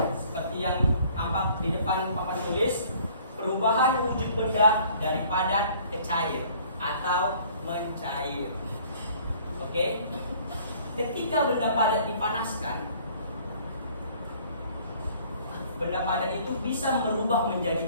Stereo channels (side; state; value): both; inverted; correlation -0.55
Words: Seperti yang tampak di depan papan tulis, perubahan wujud benda dari padat ke cair atau mencair. Oke? Ketika benda padat dipanaskan, benda padat itu bisa berubah menjadi